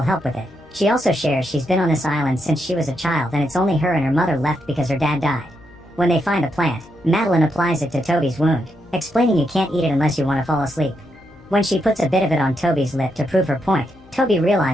help with it. She also shares she's been on this island since she was a child and it's only her and her mother left because her dad died. When they find the plant, Madeline applies it to Toby's wound, explaining you can't eat it unless you want to fall asleep. When she puts a bit of it on Toby's lip to prove her point, Toby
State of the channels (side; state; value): left; noise; hum, 26 dB below the sound